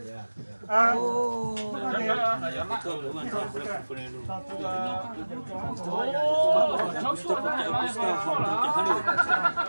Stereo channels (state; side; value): inverted; both; correlation -1.00